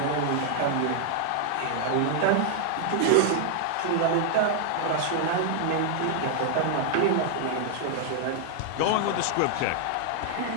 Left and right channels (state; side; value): different; both; correlation 0.00